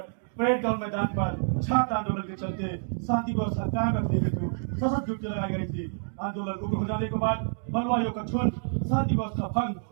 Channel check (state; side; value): silent; left; digital silence